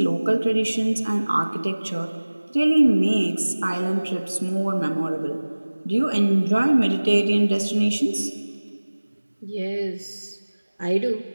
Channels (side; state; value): both; inverted; correlation -1.00